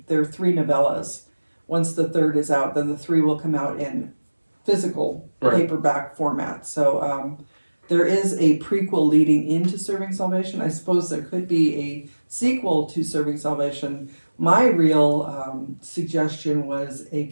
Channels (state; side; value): inverted; both; correlation -1.00